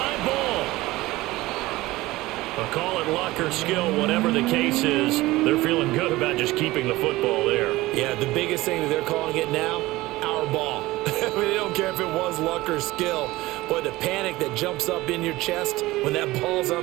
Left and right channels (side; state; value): left; quieter; 18.8 dB